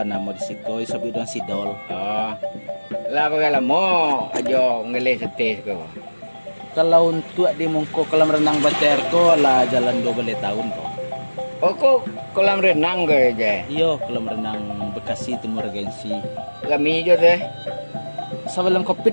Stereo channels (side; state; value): both; inverted; correlation -1.00